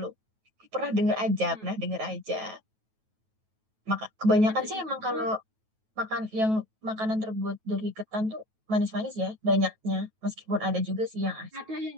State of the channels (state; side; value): late; left; 9.3 ms